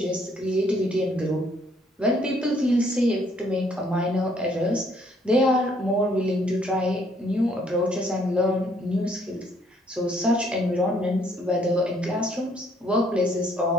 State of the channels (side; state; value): both; normal; correlation 0.66